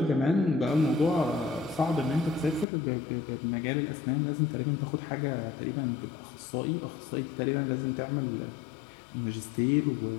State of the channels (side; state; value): right; drops out; at 2.7 s